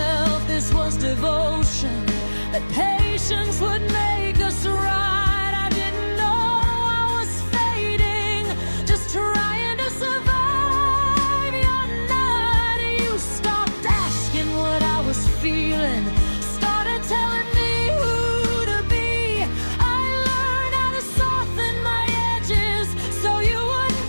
this was devotion, that patience would make us right. I didn't know I was fading, just trying to survive. Your night, you stopped asking what I was feeling, started telling me who to be. I learned how to soften my edges so you wouldn't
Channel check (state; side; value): inverted; both; correlation -1.00